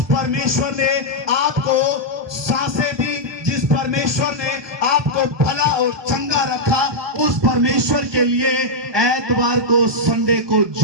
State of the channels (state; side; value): late; left; 1.2 ms